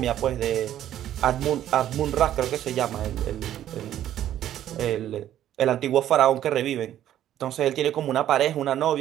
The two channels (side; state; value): left; quieter; 11.7 dB